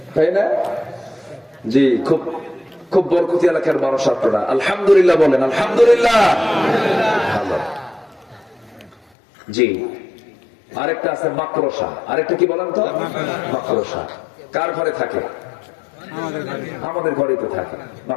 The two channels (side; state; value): right; drops out; at 9.0 s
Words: তাই না? জি, খুব খুব বরকতি এলাকার মানুষ আপনারা। আলহামদুলিল্লাহ বলেন, আলহামদুলিল্লাহ। ভালো। জি, আরেকটা আছে মাকড়সা। আরেকটা কি বলেন তো? মাকড়সা। কার ঘরে থাকে? আমাদের ঘরে তো থাকে